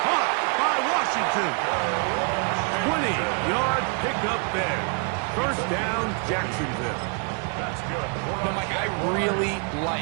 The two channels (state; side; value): quieter; left; 39.3 dB